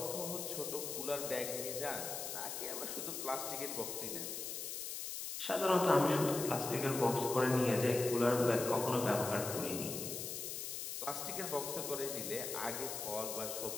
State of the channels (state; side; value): noise; left; hiss, 5 dB below the sound